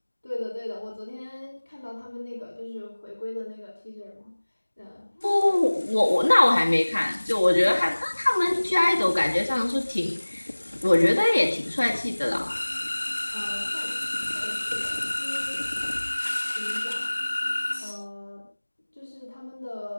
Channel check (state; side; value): inverted; both; correlation -1.00